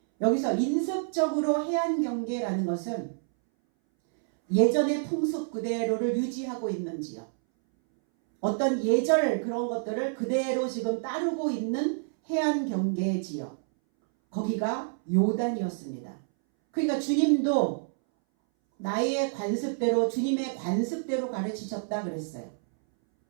여기서 인습적으로 해안 경계라는 것은 예전의 풍습 그대로를 유지하고 있는 지역. 어떤 예절 그런 것들을 그대로 지금 따르고 있는 해안 경계 지역. 거기가 요단이었습니다. 그러니까 주님도 나의 관습대로 주님의 관습대로 가르치셨다 그랬어요.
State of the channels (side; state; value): left; silent; 59 dB below the other